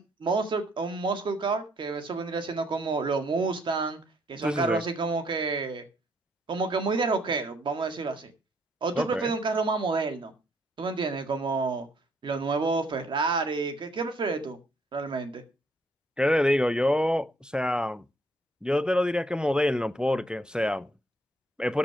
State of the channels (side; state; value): both; normal; correlation 0.68